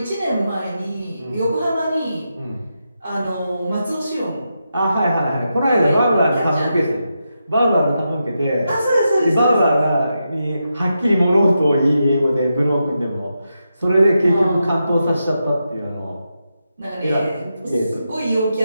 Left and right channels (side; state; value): both; inverted; correlation -0.86